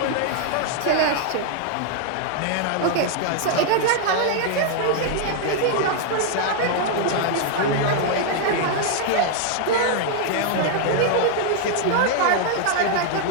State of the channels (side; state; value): both; different; correlation 0.00